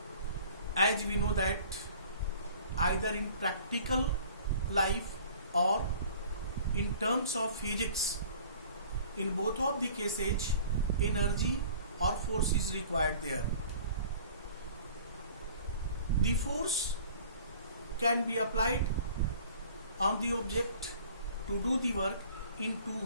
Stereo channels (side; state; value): both; inverted; correlation -0.48